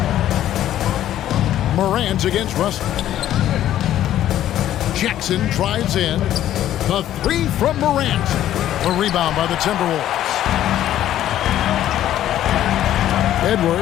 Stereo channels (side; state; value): right; quieter; 12.2 dB